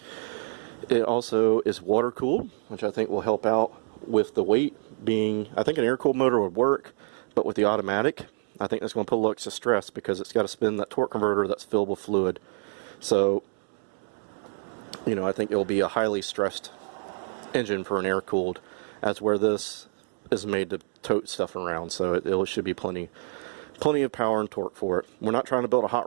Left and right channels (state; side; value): silent; left; 60 dB below the other